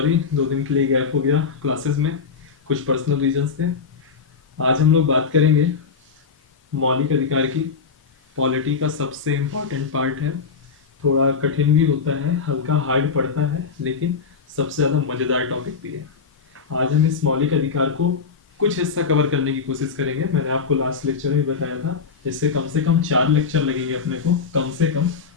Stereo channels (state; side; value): quieter; right; 5.4 dB